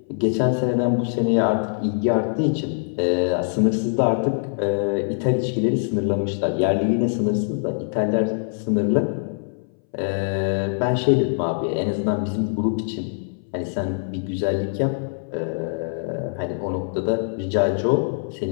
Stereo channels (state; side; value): silent; right; 62 dB below the other